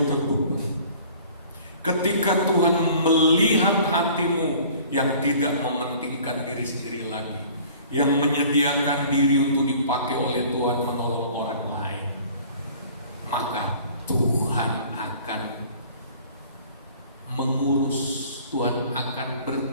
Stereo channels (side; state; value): both; inverted; correlation -0.49